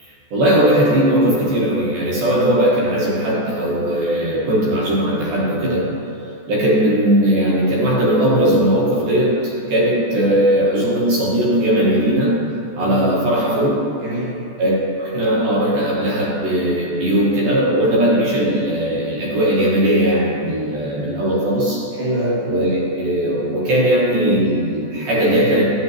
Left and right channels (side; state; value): left; late; 14 ms